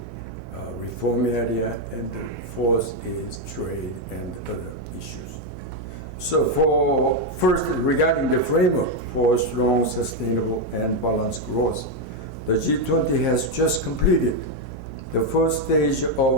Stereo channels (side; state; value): right; noise; hum, 11 dB below the sound